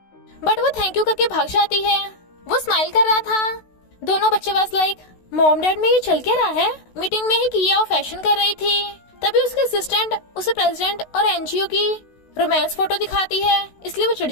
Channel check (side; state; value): right; late; 16 ms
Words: बट वो थैंक यू करके भाग जाती है। वो स्माइल कर रहा था। दोनों बच्चे वाज लाइक, मॉम डैड में ये चल क्या रहा है। मीटिंग में ही किया और फैशन कर रही थी। तभी उसके असिस्टेंट उसे प्रेसिडेंट और एनजीओ की रोमांस फोटो दिखाती है, इसलिए वो चिढ़